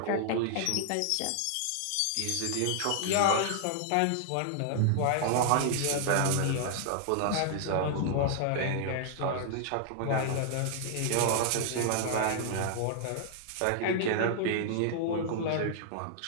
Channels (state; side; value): different; both; correlation -0.01